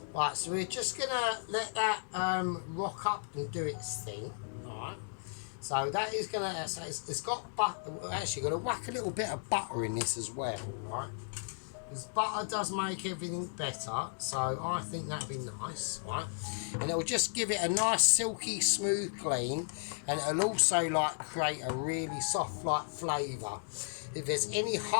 Right, so we're just going to let that rock up and do its thing. Alright. So that is going to, it's got butter. We're actually going to whack a little bit of butter in this as well, right? Because butter does make everything better, so I think that'd be nice, right? And it'll just give it a nice silky smooth clean, and it'll also like create a really soft like flavour. If there's any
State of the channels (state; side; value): silent; right; digital silence